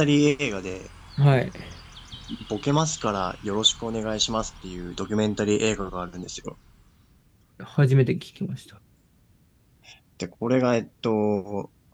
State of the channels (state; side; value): identical; both; correlation 1.00